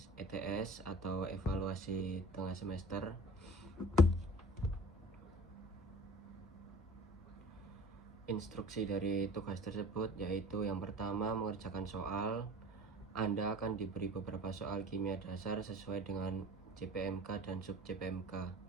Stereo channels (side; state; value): both; normal; correlation 0.43